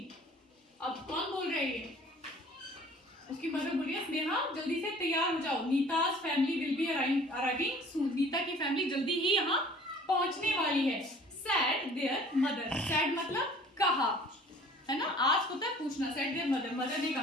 अब कौन बोल रहे हैं? उसकी मदर बोलिए, स्नेहा जल्दी से तैयार हो जाओ. नीता's family will be arriving soon. Nita की फैमिली जल्दी ही यहाँ पहुँचने वाली है. Said their mother. Said मतलब कहा, है ना. आज होता है पूछना. Said their mother. मदर ने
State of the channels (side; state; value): both; normal; correlation 0.50